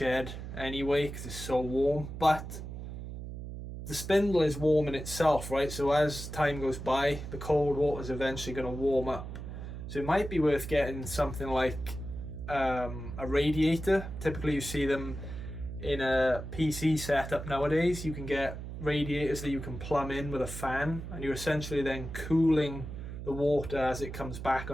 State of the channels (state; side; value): noise; right; hum, 9 dB below the sound